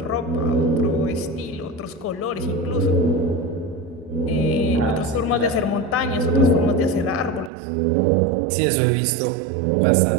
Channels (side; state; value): left; drops out; at 7.5 s